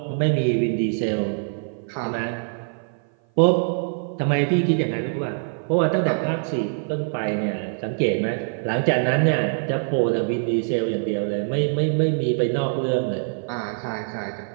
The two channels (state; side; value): silent; left; 56 dB below the other